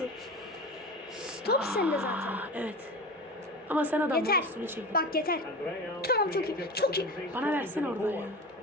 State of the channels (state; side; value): normal; both; correlation 0.30